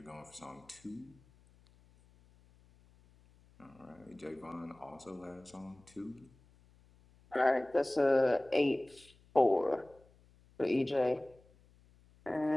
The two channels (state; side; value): noise; left; hum, 29 dB below the sound